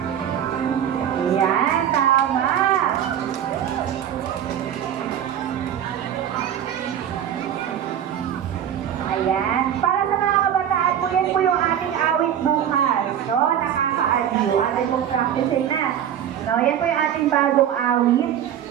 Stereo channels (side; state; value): left; quieter; 9.8 dB